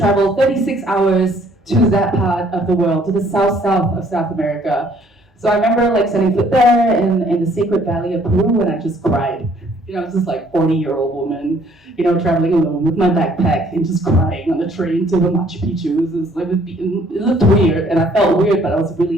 36 hours to that part of the world, to the south of South America. So I remember setting foot there in the Sacred Valley of Peru, and I just cried. I was just 40-year-old woman, traveling alone with my backpack and just crying on the train to the Machu Picchu. It looked weird, and I felt weird, but I was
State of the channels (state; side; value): normal; both; correlation 0.61